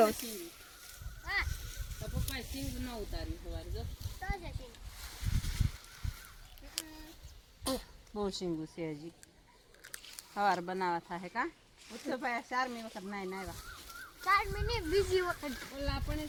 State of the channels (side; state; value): both; identical; correlation 1.00